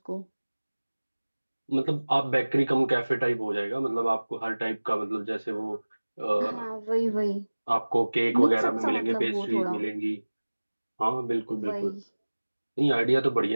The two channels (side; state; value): both; inverted; correlation -1.00